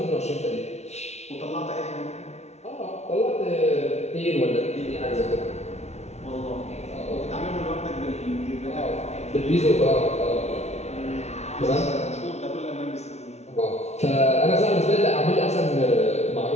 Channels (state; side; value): late; right; 0.32 ms